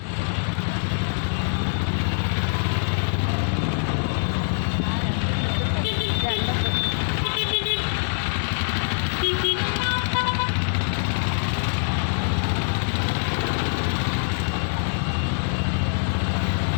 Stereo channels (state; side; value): silent; right; digital silence